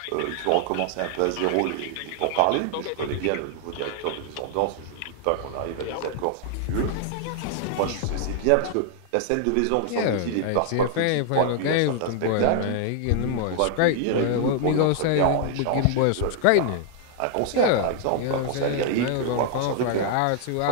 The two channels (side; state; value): both; different; correlation 0.00